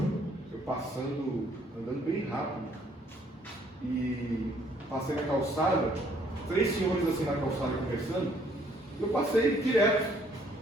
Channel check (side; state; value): both; normal; correlation 0.64